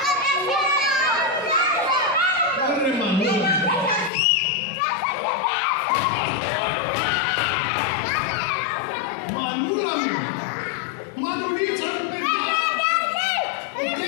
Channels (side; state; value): right; drops out; at 4.1 s